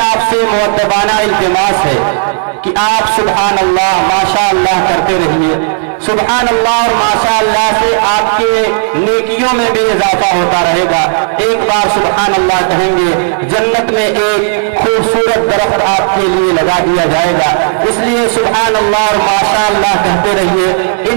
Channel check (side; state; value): left; silent; digital silence